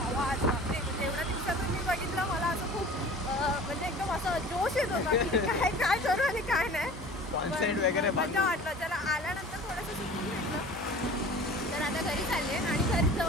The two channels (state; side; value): normal; both; correlation 0.42